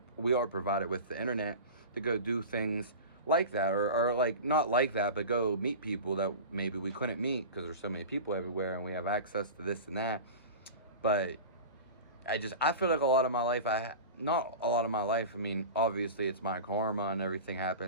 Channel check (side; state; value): both; inverted; correlation -0.32